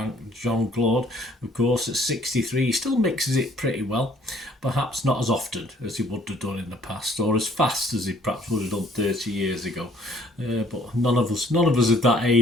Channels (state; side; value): normal; both; correlation 0.60